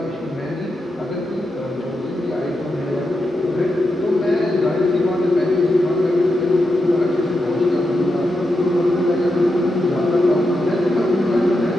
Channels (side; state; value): both; normal; correlation 0.87